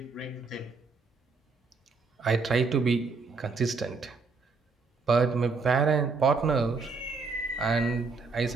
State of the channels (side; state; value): left; quieter; 4.4 dB